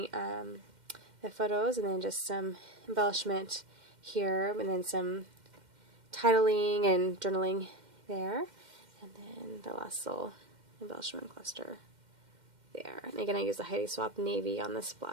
the photos, and then just some embellishment here, and then some titling and journaling there, and then the last little embellishment cluster there. And again, I use the Heidi Swapp Navy on the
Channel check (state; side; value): late; left; 2.1 ms